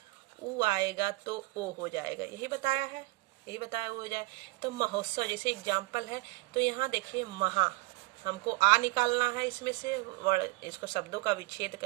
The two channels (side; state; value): left; quieter; 22.9 dB